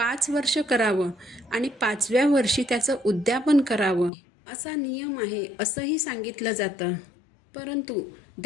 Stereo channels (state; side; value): drops out; right; at 4.1 s